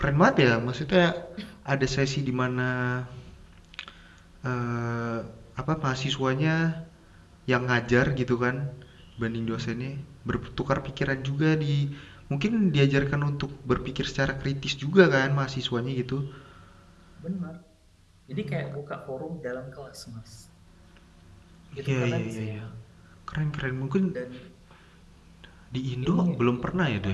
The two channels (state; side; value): identical; both; correlation 1.00